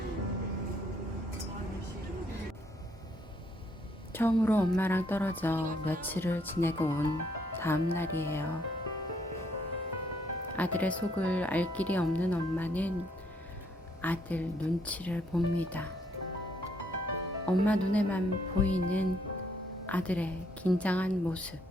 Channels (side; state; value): both; normal; correlation 0.70